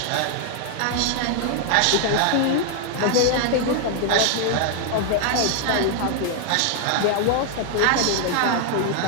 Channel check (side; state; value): both; different; correlation 0.00